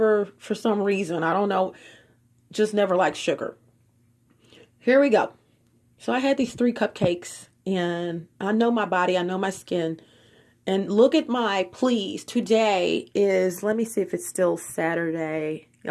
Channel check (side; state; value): both; identical; correlation 1.00